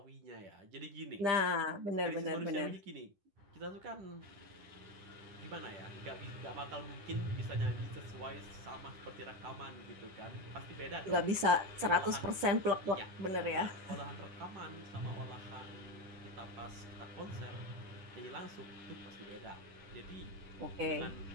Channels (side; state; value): left; late; 10 ms